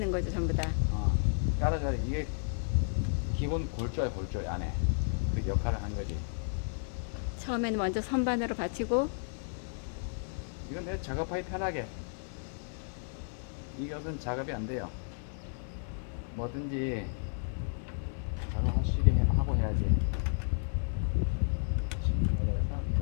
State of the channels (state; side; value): silent; right; digital silence